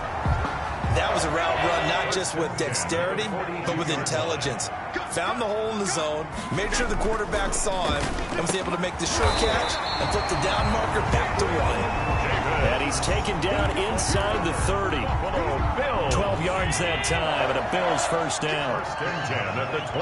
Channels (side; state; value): both; identical; correlation 1.00